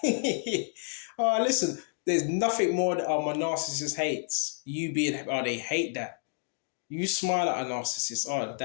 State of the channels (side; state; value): right; silent; digital silence